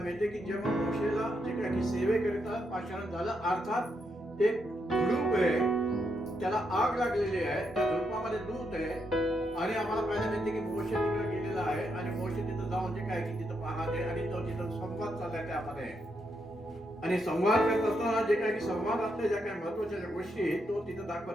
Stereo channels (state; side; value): normal; both; correlation 0.80